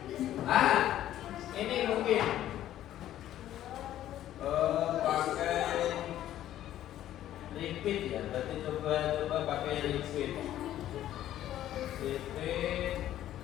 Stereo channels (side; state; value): right; quieter; 12.5 dB